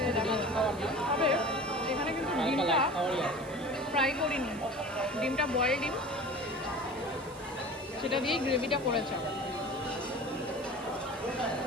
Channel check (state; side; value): noise; right; hiss, 20 dB below the sound